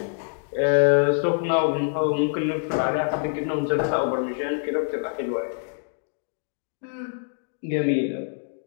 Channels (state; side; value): silent; right; digital silence